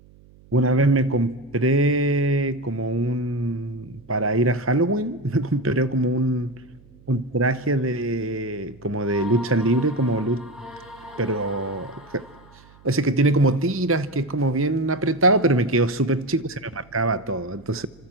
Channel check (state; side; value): noise; right; hum, 26 dB below the sound